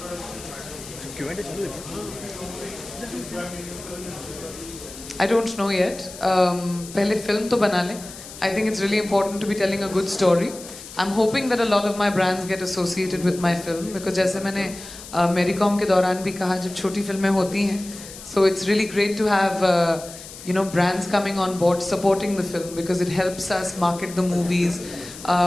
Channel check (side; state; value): left; noise; hiss, 15 dB below the sound